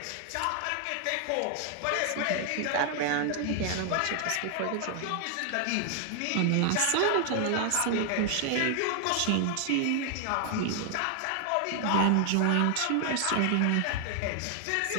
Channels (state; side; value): different; both; correlation 0.00